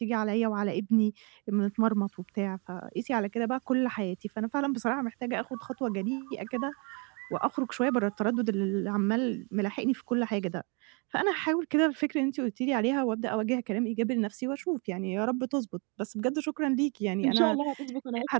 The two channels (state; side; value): quieter; left; 33.9 dB